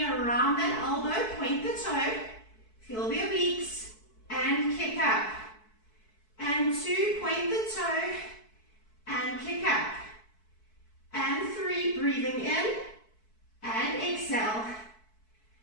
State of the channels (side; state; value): right; late; 4.6 ms